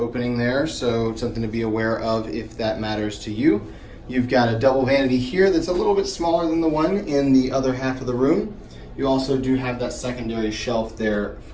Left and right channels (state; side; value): identical; both; correlation 1.00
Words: there. So something to be aware of if that matters to you. You've got a double vanity here that's a little bit smaller than the one in the other half of the room. You also do have that secondary shelf there